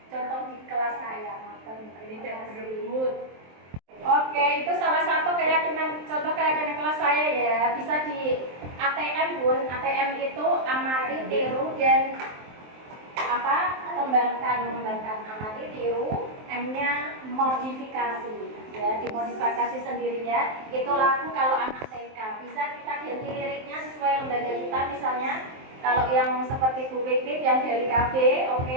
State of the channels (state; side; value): late; left; 23 ms